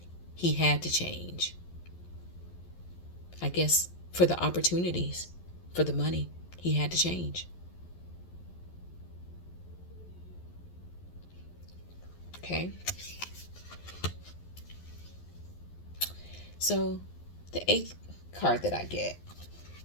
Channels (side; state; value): right; late; 11 ms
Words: He had to change. I guess for the opportunities, for the money, he had to change. Okay. So the 8th card that I get,